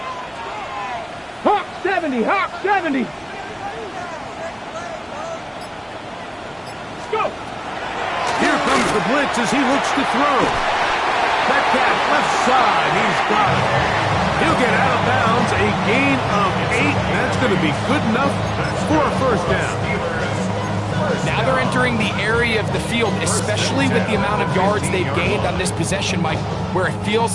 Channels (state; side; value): identical; both; correlation 1.00